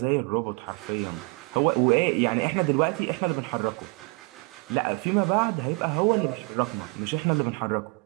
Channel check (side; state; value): left; quieter; 31.7 dB